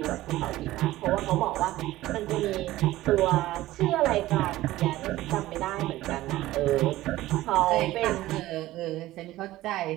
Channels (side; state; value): left; quieter; 16.4 dB